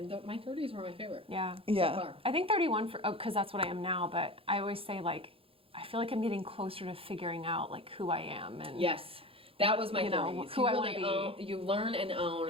my 30s were my favorite. Yeah. Yeah. So far. I think 31 because that's what I am now. But I always say like I feel like I'm getting closer to figuring out like who I am and Yes. That was my 30s. who you I wanna be. You learn and own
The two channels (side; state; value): left; late; 0.27 ms